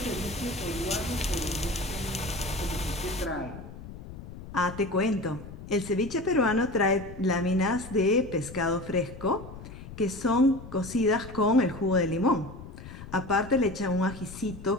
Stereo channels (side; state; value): left; noise; rumble, 14 dB below the sound